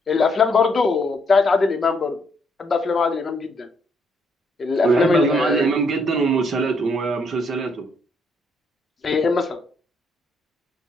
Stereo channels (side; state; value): both; normal; correlation 0.72